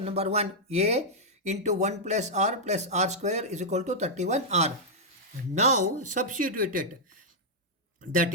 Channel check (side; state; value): both; normal; correlation -0.06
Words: number 1. A into 1 plus R square is equal to 31R. Now substitute it. That